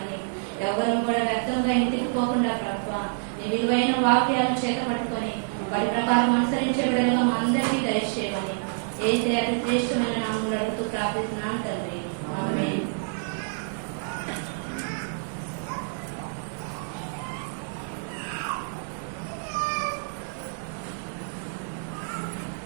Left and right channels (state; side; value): silent; left; digital silence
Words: వాక్యాలను చేతపట్టుకొని వాటి ప్రకారం అనుసరించే విధంగా మా అందరికీ దయచేయమని ఏసే అతి శ్రేష్టమైన నామములో అడుగుతూ ప్రార్థిస్తున్నాను తండ్రి. ఆమేన్.